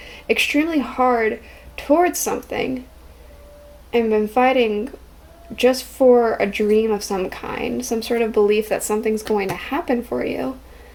extremely hard towards something and been fighting just for a dream of some kind, some sort of belief that something's going to happen for you.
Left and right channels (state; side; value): identical; both; correlation 1.00